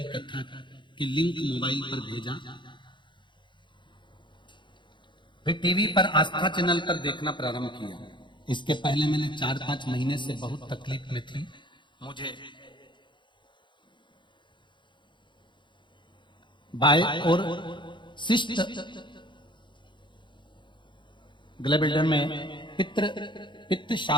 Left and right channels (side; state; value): right; late; 0.23 ms